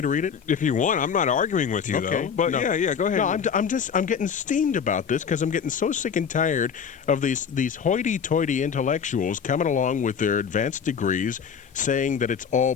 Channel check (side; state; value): right; quieter; 7.0 dB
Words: to read it? If you want. I'm not arguing with you, though. But no. yeah, go ahead. No, I'm getting steamed about this because I'm getting so sick and tired of these hoity-toity intellectuals coming along with their advanced degrees saying that it's all